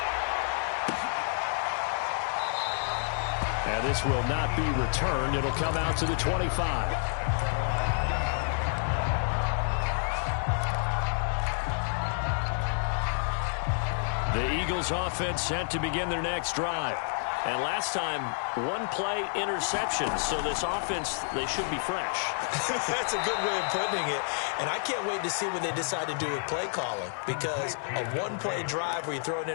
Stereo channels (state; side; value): silent; right; 58 dB below the other